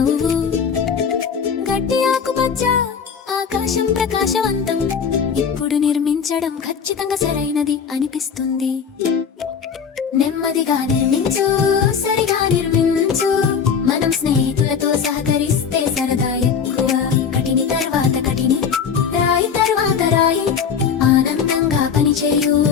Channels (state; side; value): quieter; right; 6.7 dB